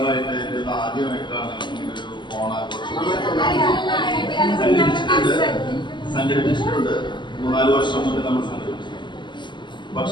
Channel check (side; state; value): right; late; 0.22 ms